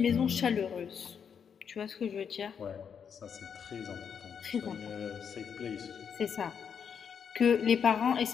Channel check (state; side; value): quieter; right; 7.2 dB